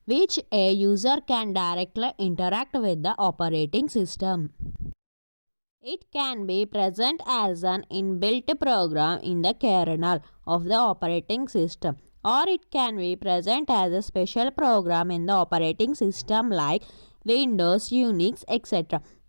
which a user can directly interact with the operating system. It can be present as an inbuilt program in the kernel of the operating system, or it can be present as a special program in the operating system like Windows, Unix, etc.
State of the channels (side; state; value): both; inverted; correlation -1.00